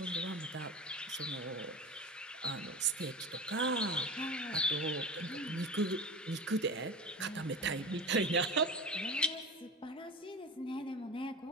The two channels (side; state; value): both; normal; correlation 0.31